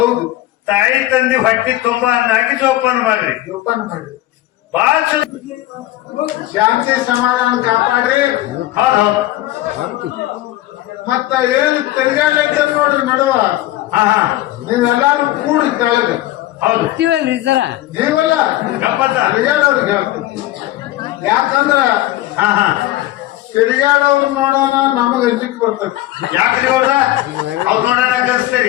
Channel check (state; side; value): quieter; right; 15.8 dB